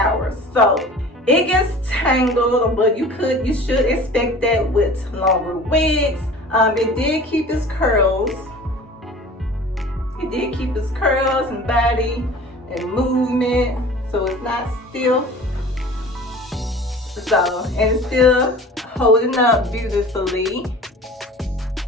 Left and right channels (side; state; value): both; normal; correlation 0.42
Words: So it gets tangled, but you should expect that with longer wigs. It did keep its curls. It did keep its curls and body and movement, so it's not stiff. So, and it's still holding up beautifully.